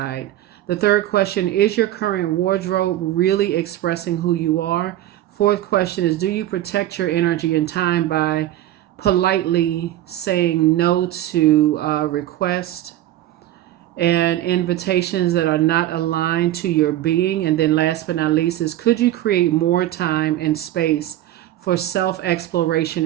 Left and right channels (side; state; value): left; quieter; 13.8 dB